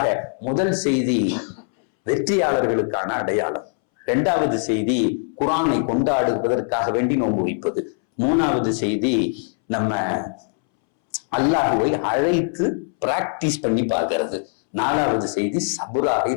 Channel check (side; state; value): right; silent; 64 dB below the other